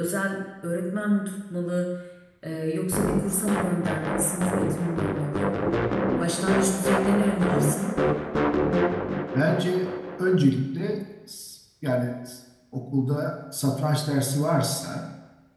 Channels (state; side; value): identical; both; correlation 1.00